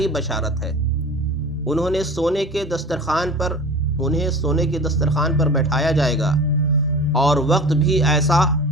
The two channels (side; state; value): both; normal; correlation 0.37